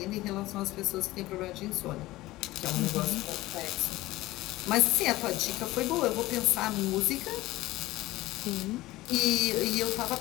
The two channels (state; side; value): quieter; right; 18.0 dB